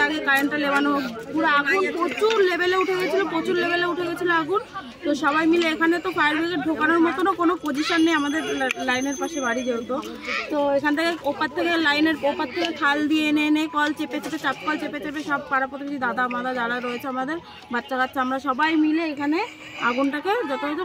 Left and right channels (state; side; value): identical; both; correlation 1.00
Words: আগে কারেন্টটা লেবানো হোক। পুরো আগুন প্রচুর লেভেলে উঠে গেছিলো, আগুন। তো সবাই মিলে এখানে তো ফায়ার ব্রিগেড ঢোকানোর মতনও কোনো পজিশন নেই আমাদের লাইনের পাশে বাড়ি যেহেতু। তো এখান থেকে ওপার থেকে লাইনের ওপার থেকে খাল দিয়ে এনে কল চেপে চাপ কল চেপে সব পাড়া প্রতিবেশী দাদা মাদা যারা রয়েছে আমাদের বাচ্চা কাচ্চা, আমরা সবাই মিলে এখানে আগুনটাকে যথাযথ